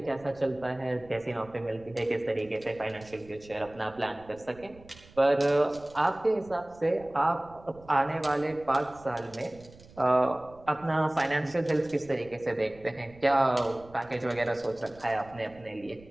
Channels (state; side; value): noise; right; rumble, 23 dB below the sound